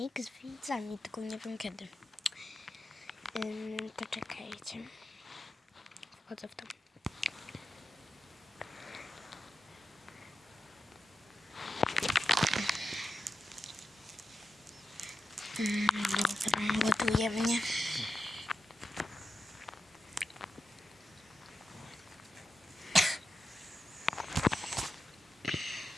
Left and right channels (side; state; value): both; normal; correlation 0.90